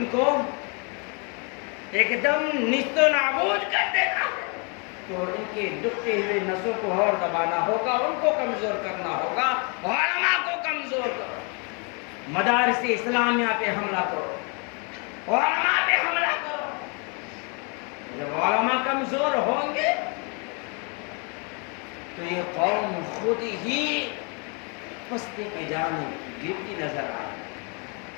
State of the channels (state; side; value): quieter; right; 34.8 dB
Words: کو ایک دم نیست و نابود کر دینا ہے۔ تو ان کی دکھتی ہوئی نسوں کو اور دبانا ہوگا، ان کو کمزور کرنا ہوگا، علماء کو کمزور کرو، مدارس اسلامیہ پہ حملہ کرو، علماء پہ حملہ کرو۔ جب علماء کمزور ہوں گے تو یہ قوم خود ہی پستی کی جانب گرتی نظر آئے،